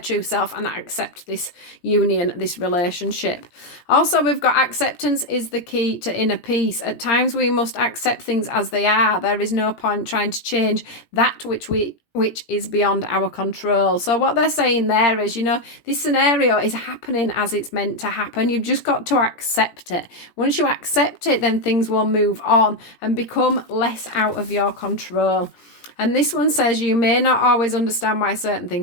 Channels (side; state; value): right; late; 17 ms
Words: self and accept this union, this relationship. Also, we've got acceptance is the key to inner peace. At times we must accept things as they are. There is no point trying to change that which is beyond our control. So what they're saying there is, you know, this scenario is happening as it's meant to happen. You've just got to accept it. Once you accept it, then things will move on and become less out of your control. And this one says you may not always understand why certain